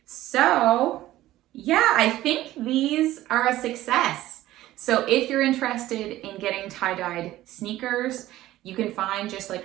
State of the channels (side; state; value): left; quieter; 15.3 dB